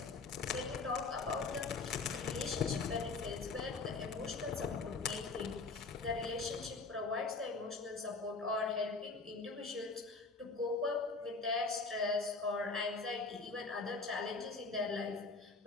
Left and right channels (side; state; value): right; quieter; 4.0 dB